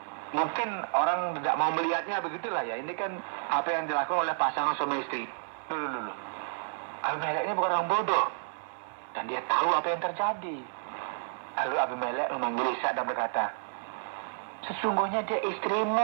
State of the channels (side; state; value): left; silent; digital silence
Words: mungkin orang tidak mau melihatnya, begitulah ya. Ini kan apa yang dilakukan oleh pasangan suami istri. Dulu. Abimelek ini bukan orang bodoh. Dan dia tahu apa yang terjadi. Lalu Abimelek memanggil Ishak dan berkata, sesungguhnya dia